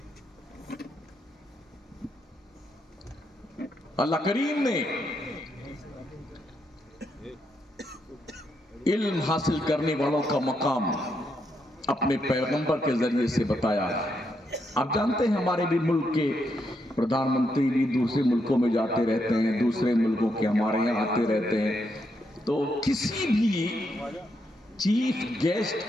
اللہ کریم نے علم حاصل کرنے والوں کا مقام اپنے پیغمبر کے ذریعے سے بتایا ہے. آپ جانتے ہیں ہمارے بھی ملک کے پردھان منتری بھی دوسرے ملکوں میں جاتے رہتے ہیں, دوسرے ملکوں کے ہمارے یہاں آتے رہتے ہیں. تو کسی بھی چیف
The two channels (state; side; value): normal; both; correlation 0.79